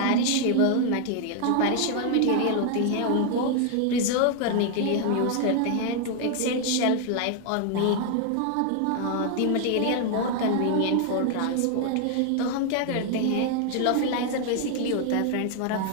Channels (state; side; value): different; both; correlation 0.00